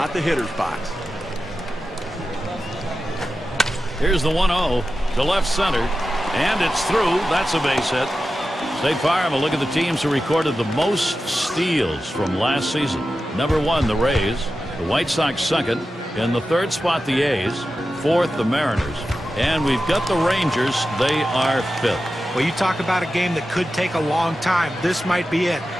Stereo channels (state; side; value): normal; both; correlation 0.92